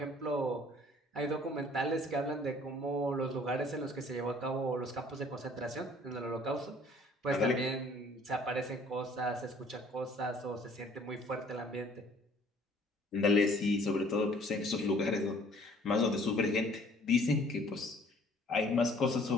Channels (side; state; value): both; normal; correlation 0.56